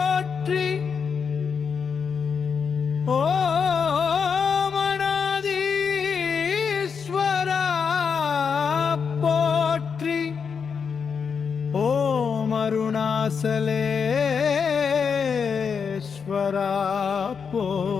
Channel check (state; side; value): quieter; right; 6.2 dB